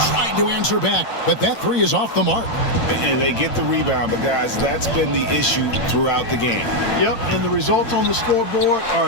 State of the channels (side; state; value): right; late; 8.8 ms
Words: Tried to answer back, but that three is off the mark. And they get the rebound, but guys, that's been the issue throughout the game. Yep, and the results on the scoreboard are